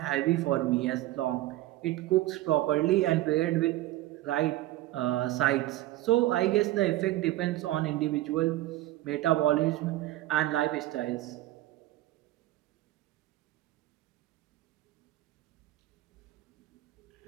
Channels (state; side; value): quieter; left; 16.1 dB